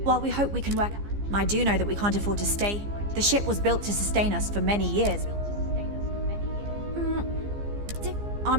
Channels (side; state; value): left; late; 15 ms